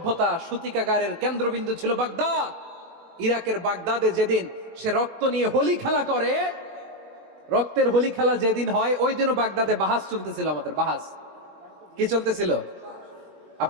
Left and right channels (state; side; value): late; left; 21 ms